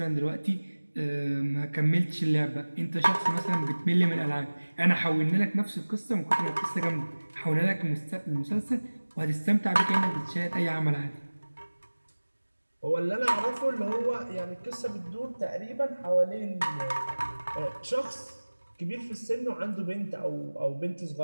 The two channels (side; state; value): both; inverted; correlation -1.00